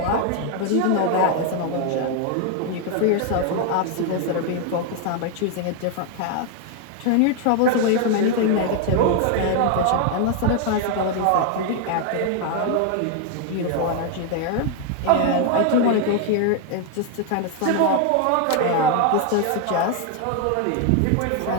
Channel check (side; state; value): both; different; correlation 0.00